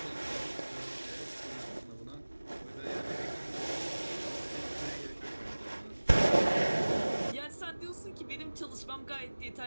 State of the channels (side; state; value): both; inverted; correlation -1.00